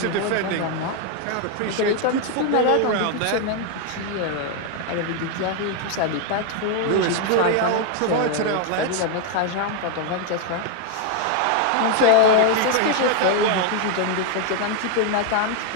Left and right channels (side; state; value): both; different; correlation 0.01